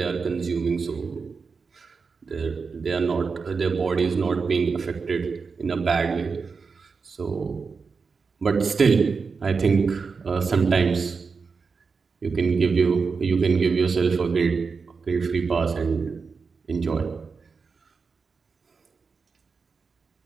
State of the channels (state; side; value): quieter; left; 5.0 dB